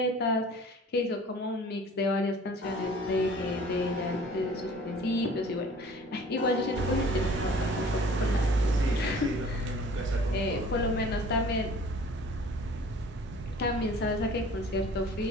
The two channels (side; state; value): both; normal; correlation 0.49